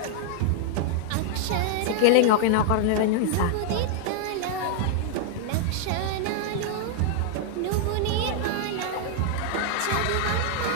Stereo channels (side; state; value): both; different; correlation 0.00